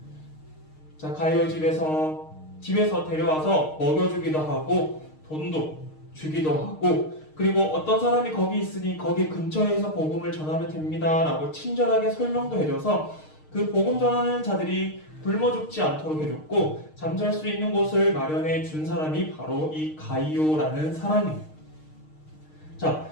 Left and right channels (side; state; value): right; late; 6.5 ms